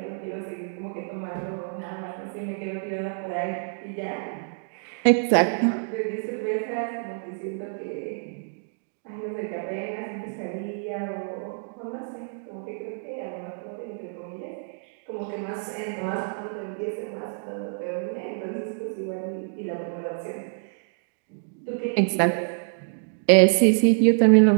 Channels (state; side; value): silent; left; digital silence